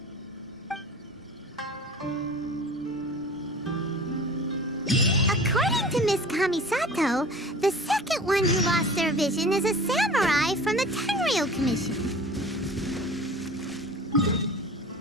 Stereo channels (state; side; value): normal; both; correlation 0.41